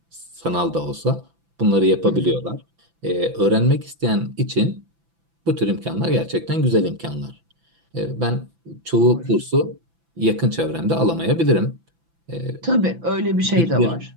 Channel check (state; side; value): late; left; 6.0 ms